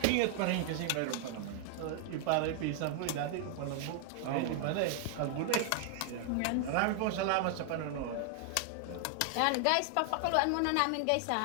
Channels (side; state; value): both; different; correlation 0.00